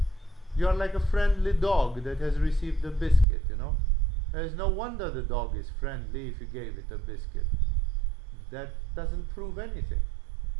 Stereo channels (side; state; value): left; drops out; at 3.2 s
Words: You are like a friendly dog that has received a biscuit, There is no wonder the dog is friendly if you gave it a biscuit. That doesn't prove anything.